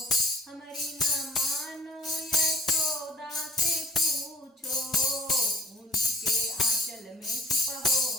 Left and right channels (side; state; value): both; normal; correlation 0.52